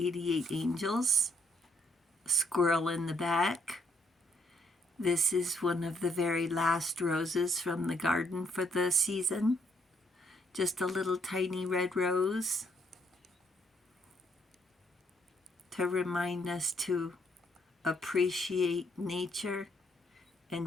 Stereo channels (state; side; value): normal; both; correlation 0.71